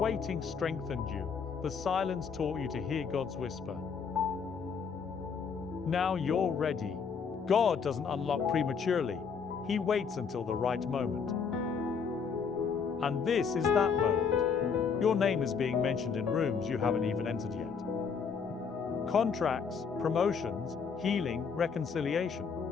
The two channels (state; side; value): quieter; right; 6.1 dB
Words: strengthened you, the silence taught you to hear God's whisper. Now you're ready. God doesn't unlock prematurely. He waits until the right moment. And this is that moment. Your name is being mentioned in rooms you haven't even entered yet. Contracts, promotions, healing, reconciliation.